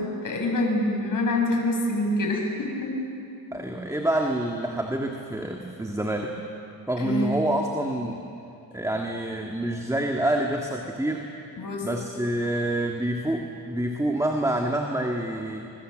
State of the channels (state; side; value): normal; both; correlation 0.61